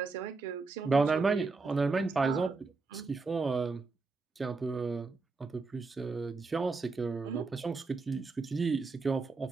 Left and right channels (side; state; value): left; quieter; 4.0 dB